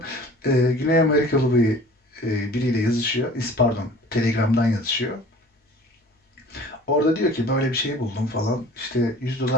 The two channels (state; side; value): normal; both; correlation 0.45